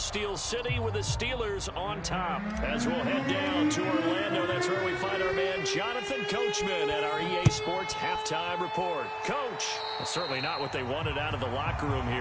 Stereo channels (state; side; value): identical; both; correlation 1.00